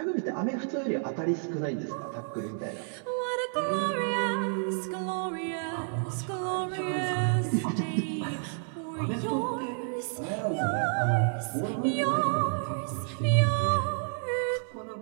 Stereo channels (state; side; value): silent; left; 58 dB below the other